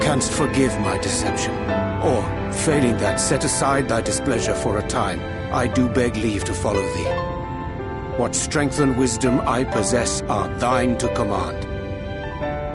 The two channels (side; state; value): both; identical; correlation 1.00